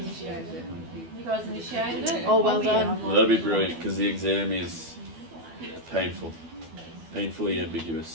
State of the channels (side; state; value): left; late; 12 ms